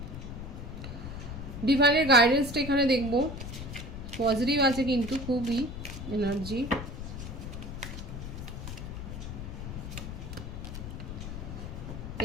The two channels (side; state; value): left; noise; rumble, 8 dB below the sound